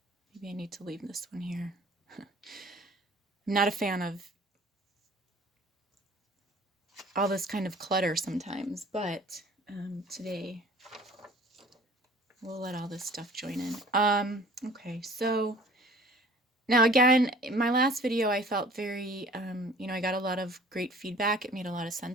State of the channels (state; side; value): normal; both; correlation 0.49